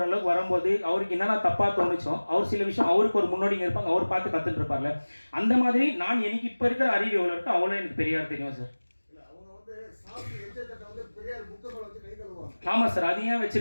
வரும்போது அவருக்கு என்னென்ன தப்பாக தோணுச்சோ, அவர் சில விஷயம் அவருக்கு ஒரு முன்னோடிங்க இருப்பாங்க, அவர் பார்த்து கற்றுட்டு இருப்பார்ல. அந்த மாதிரி நான் எனக்கு இப்போ இருக்கிற அறிவு எவ்வளோ இருக்கோ அவ்வளோ எனக்கு பெரியார் தெரியும் சார். ஆமாம் சார். அது ஏன்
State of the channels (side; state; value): both; inverted; correlation -1.00